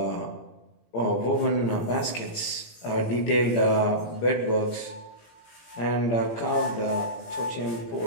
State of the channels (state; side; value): late; right; 17 ms